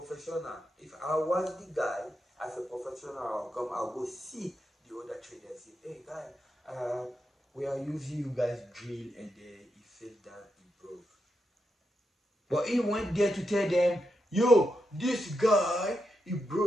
If I was the guy as a professional, I'll go see the other trader and say, hey guy, we are using you guys drill, and he fell down, he broke. But he went there to tell them, yo, this guy, he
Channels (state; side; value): normal; both; correlation 0.85